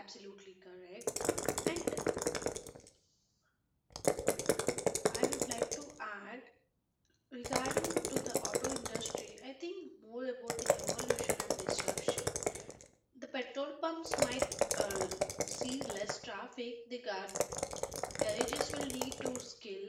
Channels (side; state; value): both; identical; correlation 1.00